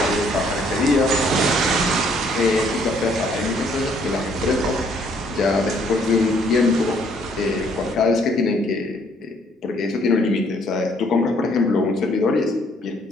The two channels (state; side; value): normal; both; correlation 0.65